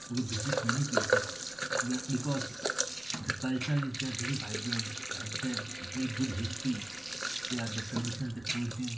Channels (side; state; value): right; noise; rumble, 26 dB below the sound